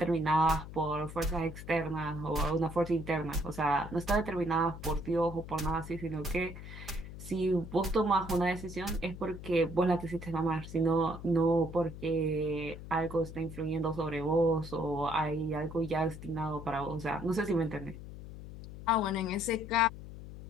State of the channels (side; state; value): left; noise; hum, 12 dB below the sound